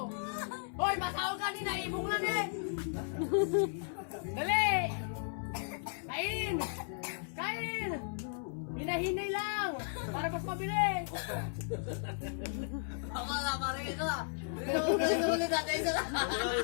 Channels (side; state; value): right; silent; 54 dB below the other